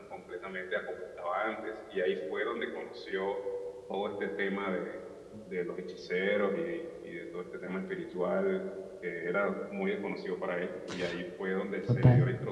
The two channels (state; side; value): identical; both; correlation 1.00